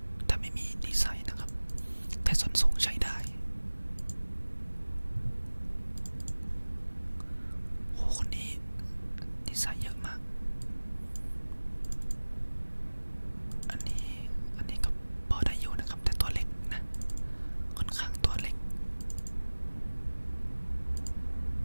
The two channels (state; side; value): inverted; both; correlation -1.00